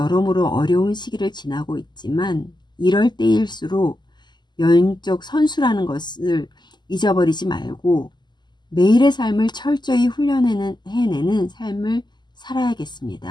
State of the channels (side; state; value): right; late; 0.21 ms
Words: 어려운 시기를 지나고 있지만 이럴 때일수록 영적 선수라는 것을 잊어버리지 말고 매일의 삶을 철저히 해내는 삶을